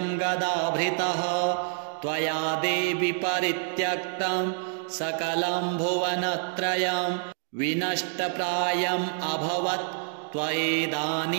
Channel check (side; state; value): left; silent; 60 dB below the other